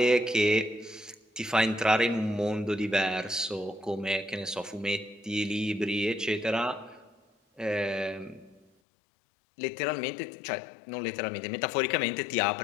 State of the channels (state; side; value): drops out; right; at 8.7 s